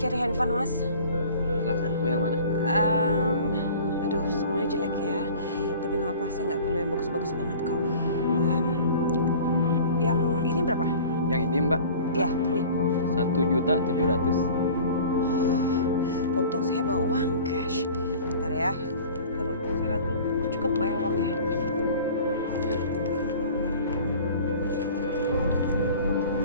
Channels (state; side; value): inverted; both; correlation -0.44